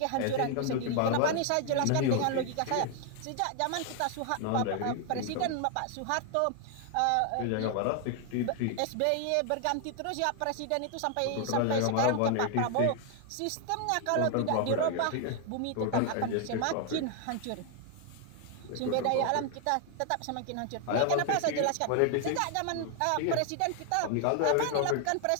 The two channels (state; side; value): different; both; correlation 0.00